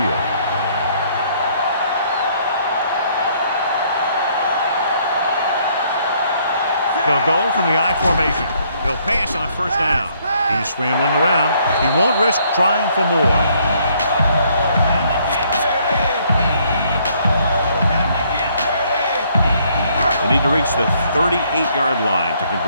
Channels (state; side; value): inverted; both; correlation -0.66